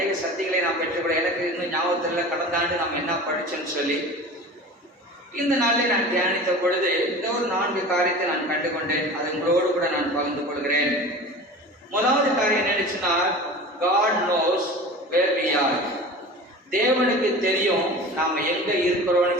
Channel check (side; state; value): both; normal; correlation 0.36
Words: சக்திகளை நாம் பெற்றுக்கூட எனக்கு இன்னும் ஞாபகத்தில் கடந்த ஆண்டு நாம் என்ன படிச்சோன்னு சொல்லி இந்த நாளில் நான் தியானித்த பொழுது இந்த ஒரு 4 காரியத்தை நான் கண்டுகொண்டேன். அது உங்களோடு கூட நான் பகிர்ந்து கொள்கிறேன். முதலாவது காரியம் என்னச்சுன்னா, God knows where we are. தேவனுக்கு தெரியும் நாம எங்க